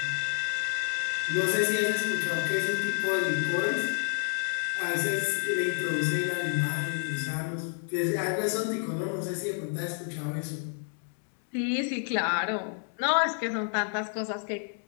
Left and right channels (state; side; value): silent; right; 58 dB below the other